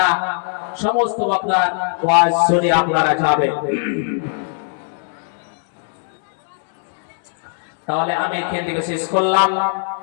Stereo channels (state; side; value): silent; right; digital silence